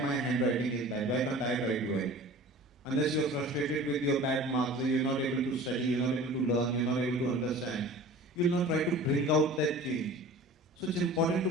handwriting is bad, why can't I write well? Unless you are frustrated with your bad marks, you're not able to study, you're not able to learn, you're not able to understand, you will not try to bring out that change. So it's important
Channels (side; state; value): both; normal; correlation 0.41